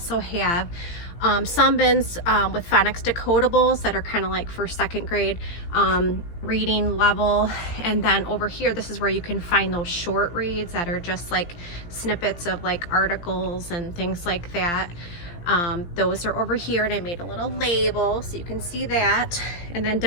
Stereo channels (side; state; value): right; late; 17 ms